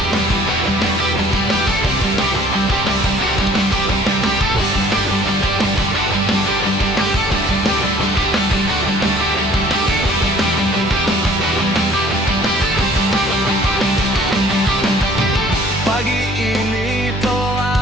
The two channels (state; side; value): normal; both; correlation 0.55